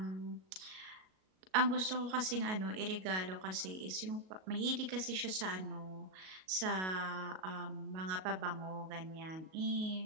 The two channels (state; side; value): late; left; 37 ms